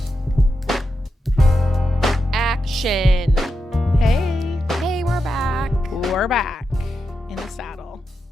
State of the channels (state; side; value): normal; both; correlation 0.87